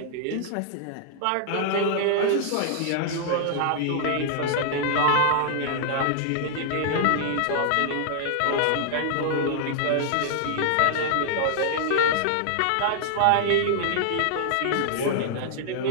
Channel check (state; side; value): different; both; correlation -0.01